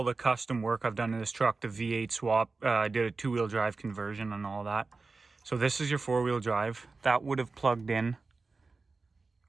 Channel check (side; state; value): left; quieter; 4.0 dB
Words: the custom work I've done in this truck, the V8 swap, I did a two-wheel drive conversion and all that. So this is your four-wheel drive. That would have plugged in